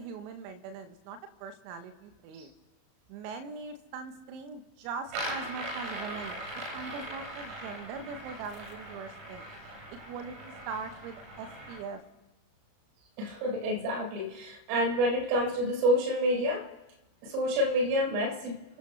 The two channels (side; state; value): left; late; 35 ms